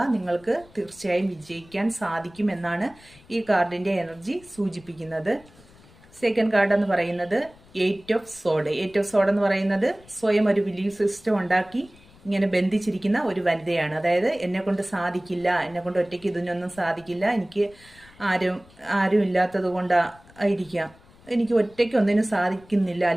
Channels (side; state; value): left; noise; rumble, 26 dB below the sound